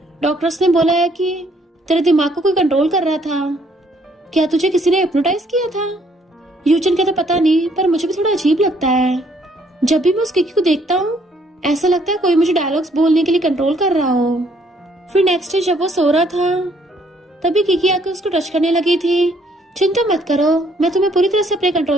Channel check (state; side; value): normal; both; correlation 0.66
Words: डॉक्टर्स ने बोला है कि तेरे दिमाग को कोई कंट्रोल कर रहा था, क्या तुझे किसी ने हिप्नोटाइज किया था। यूचन कहता पता नहीं, पर मुझे भी थोड़ा अजीब लगता है, जब भी मैं उस किकी को देखता हूँ ऐसा लगता है कोई मुझे डायलॉग्स बोलने के लिए कंट्रोल कर रहा हो। फिर नेक्स्ट डे जब वो सो रहा था तभी किकी आकर उसको टच करने लगी थी। चिंता मत करो, मैं तुम्हें पूरी तरह से अपने